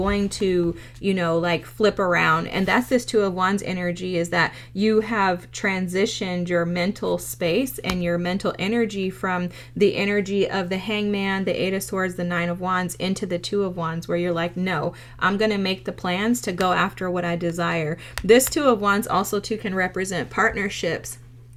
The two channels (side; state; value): both; identical; correlation 1.00